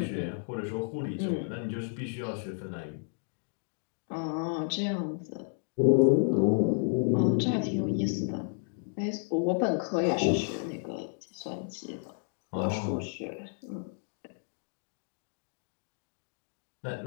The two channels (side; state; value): right; silent; 57 dB below the other